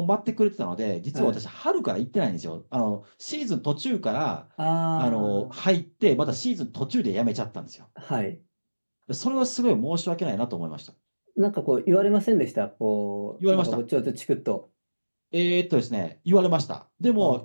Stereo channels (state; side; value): inverted; both; correlation -1.00